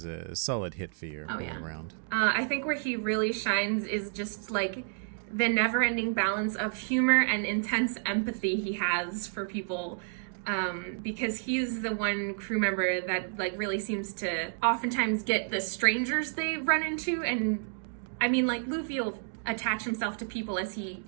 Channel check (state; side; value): silent; left; digital silence